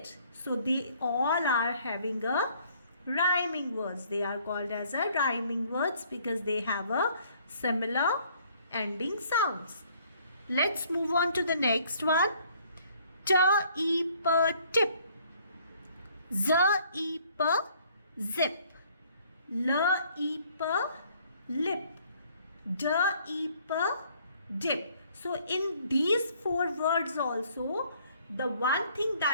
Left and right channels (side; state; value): both; inverted; correlation -0.61